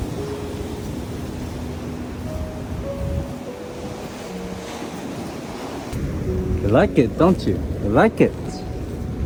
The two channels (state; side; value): identical; both; correlation 1.00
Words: You like it, don't you? You like it?